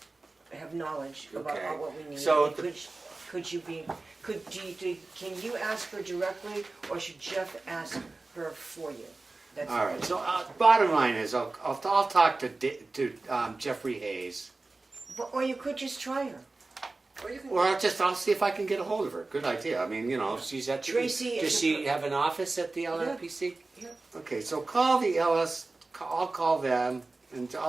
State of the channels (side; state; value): left; quieter; 3.4 dB